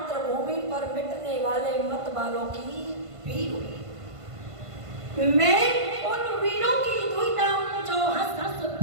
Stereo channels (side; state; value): left; late; 1.5 ms